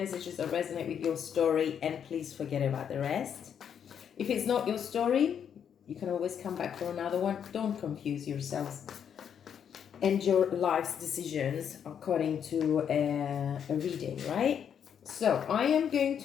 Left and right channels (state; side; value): quieter; right; 8.2 dB